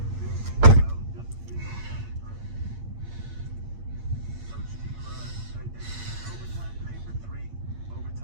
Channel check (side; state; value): left; late; 8.7 ms